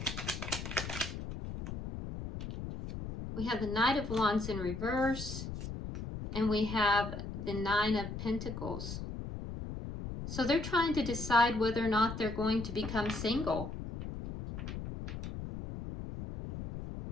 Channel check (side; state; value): left; noise; rumble, 7 dB below the sound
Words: We have the Knight of Wands in reverse, and we have the Nine of Pentacles. So they're trying to decide whether or not they're going to become single.